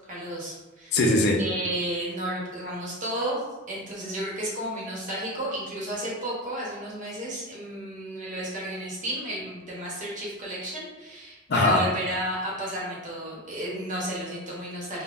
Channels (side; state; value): both; normal; correlation 0.22